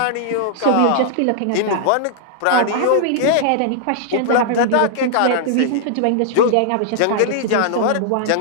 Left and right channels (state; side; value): different; both; correlation -0.01